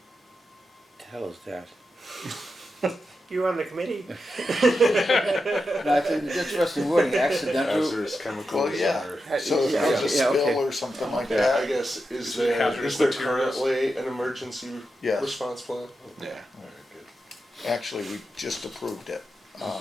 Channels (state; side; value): normal; both; correlation 0.88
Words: The hell is that? You were on the committee. No, I think it's interesting wording, accidental. Hazardous chemicals. Well, yeah. or- So if Yeah, there's a yeah, spill okay. or something like I that. guess, is it there hazardous materials? currently an emergency Yes. response plan? Yeah. Alright, good. Actually, we just approved it.